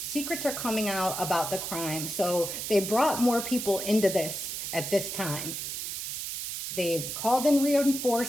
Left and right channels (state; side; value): noise; right; hiss, 5 dB below the sound